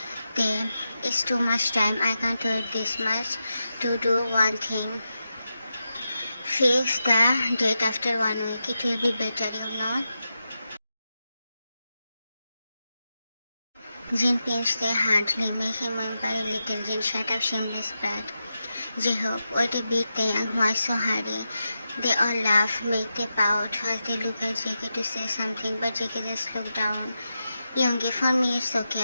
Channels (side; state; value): both; inverted; correlation -0.89